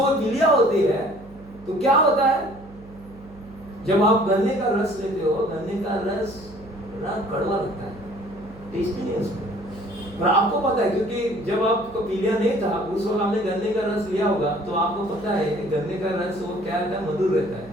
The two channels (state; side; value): noise; right; hum, 21 dB below the sound